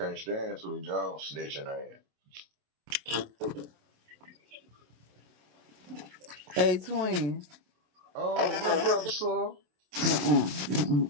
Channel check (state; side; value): late; left; 28 ms